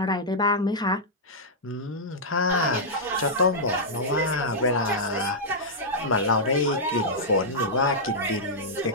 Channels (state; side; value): normal; both; correlation -0.09